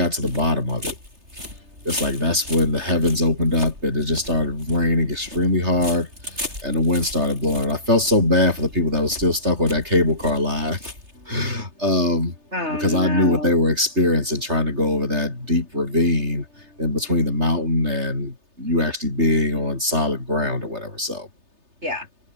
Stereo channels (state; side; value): late; left; 3.3 ms